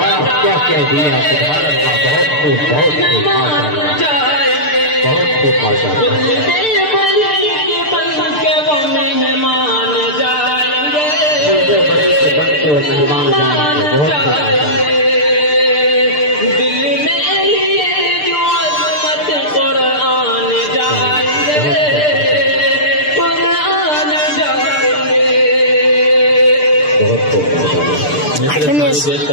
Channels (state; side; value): late; right; 6.7 ms